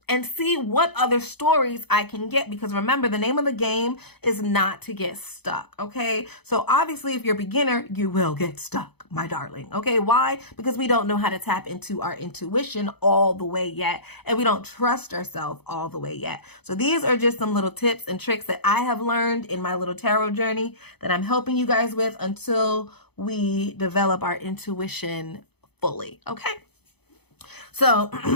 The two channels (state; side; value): late; right; 0.98 ms